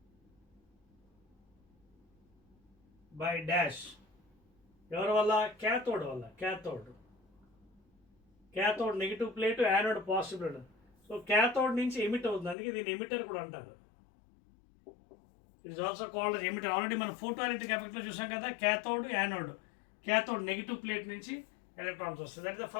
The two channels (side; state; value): right; drops out; at 12.6 s